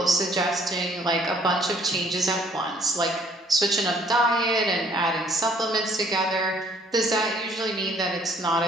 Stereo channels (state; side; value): normal; both; correlation 0.61